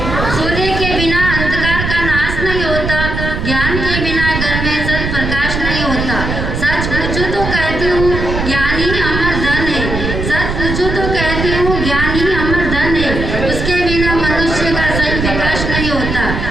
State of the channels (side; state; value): right; noise; rumble, 3 dB below the sound